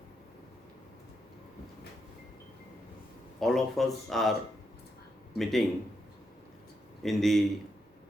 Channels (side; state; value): both; normal; correlation 0.82